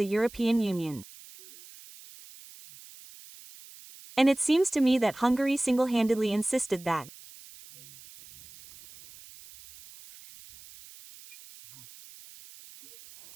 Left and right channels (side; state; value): right; noise; hiss, 21 dB below the sound